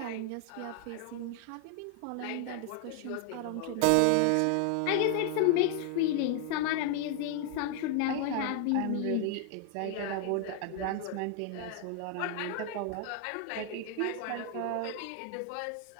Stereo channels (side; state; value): both; different; correlation 0.00